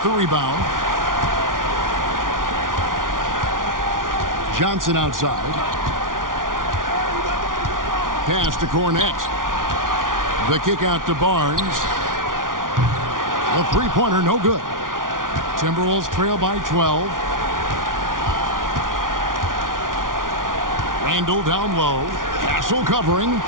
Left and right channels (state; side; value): late; left; 0.89 ms